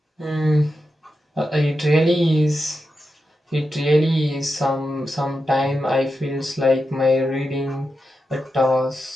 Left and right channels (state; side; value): normal; both; correlation 0.89